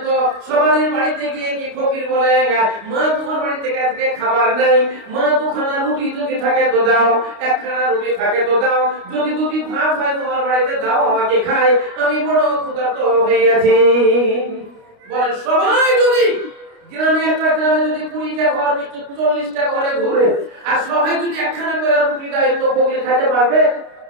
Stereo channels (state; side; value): late; left; 29 ms